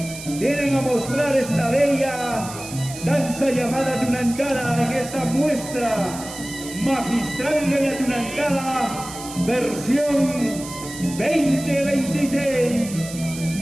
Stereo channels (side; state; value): right; noise; hiss, 12 dB below the sound